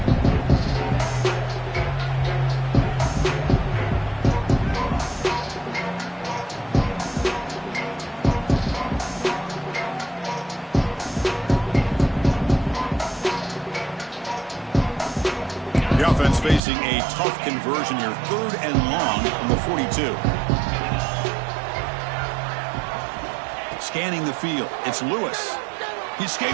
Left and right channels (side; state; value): left; drops out; at 16.6 s